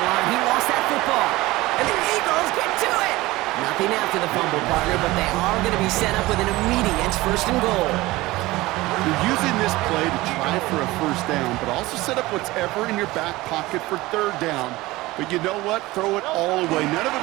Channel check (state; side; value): quieter; left; 19.4 dB